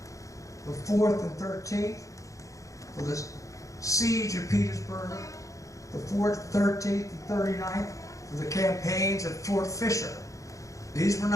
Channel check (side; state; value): right; late; 0.16 ms